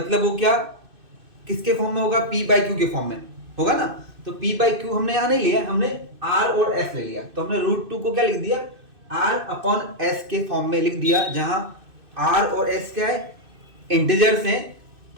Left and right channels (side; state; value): left; late; 2.6 ms